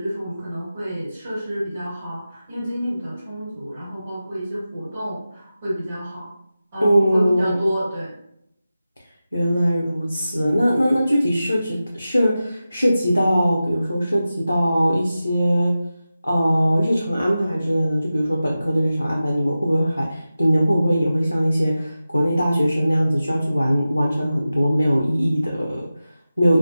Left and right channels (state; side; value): inverted; both; correlation -0.94